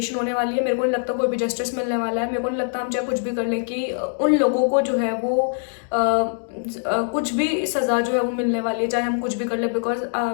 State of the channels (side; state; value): right; silent; digital silence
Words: होने वाली है। मेरे को नहीं लगता कोई भी जस्टिस मिलने वाला है। मेरे को नहीं लगता हम चाहे कुछ भी कर लें कि उन लोगों को जो है वो कुछ भी सज़ा जो है वो मिलने वाली है, चाहे हम कुछ भी कर लें। बिकॉज